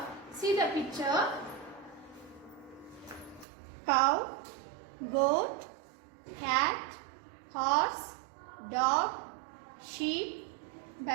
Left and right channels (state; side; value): drops out; left; at 3.5 s